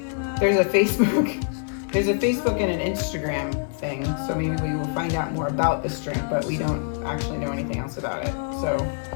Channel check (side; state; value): right; silent; digital silence